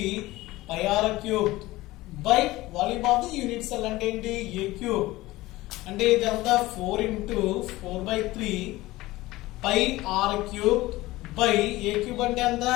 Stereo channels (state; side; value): quieter; right; 18.5 dB